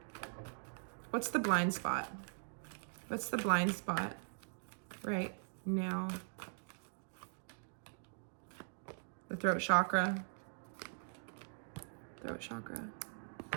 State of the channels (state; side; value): silent; left; digital silence